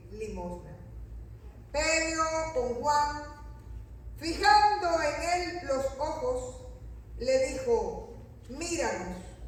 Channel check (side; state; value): both; identical; correlation 1.00